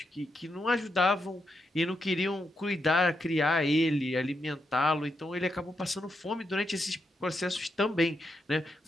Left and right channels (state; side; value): normal; both; correlation 0.83